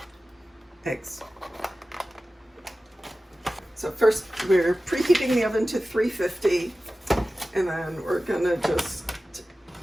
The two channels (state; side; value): normal; both; correlation 0.95